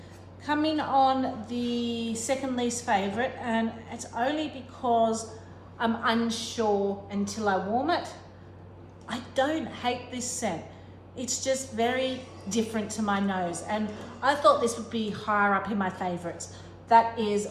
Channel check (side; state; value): both; identical; correlation 1.00